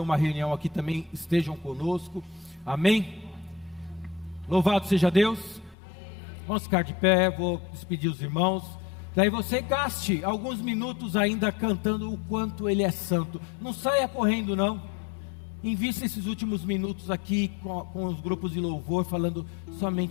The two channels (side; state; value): right; drops out; at 5.8 s